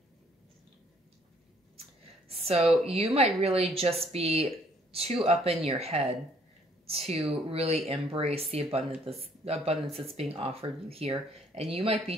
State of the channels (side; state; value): both; normal; correlation 0.63